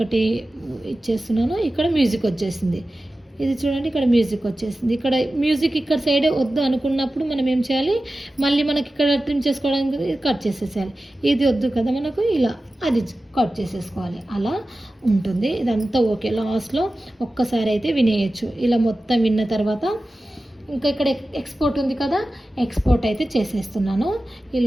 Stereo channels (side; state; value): both; normal; correlation 0.94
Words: ఇచ్చేస్తున్నాను, ఇక్కడ మ్యూజిక్ వచ్చేసింది. ఇది చూడండి ఇక్కడ మ్యూజిక్ వచ్చేసింది. ఇక్కడ మ్యూజిక్ ఇక్కడ సైడ్ వద్దు అనుకున్నప్పుడు మనం ఏం చేయాలి, మళ్ళీ మనకి ఇక్కడ ట్రిమ్ చేసుకోవడానికి కట్ చేసేసేయాలి. ఇది వద్దు కదా మనకు, ఇలా అది కట్ చేసేసుకోవాలి. అలా ఉంటుంది. ఇదంతా ఓకే. లాస్ట్లో ఒక్కసారి అయితే వినేయచ్చు. ఇలా మొత్తం విన్న తర్వాత ఇంకా ఇక్కడ ఎక్స్పోర్ట్ ఉంది కదా, ఎక్స్పోర్ట్ అయితే చేసేస్తున్నాను.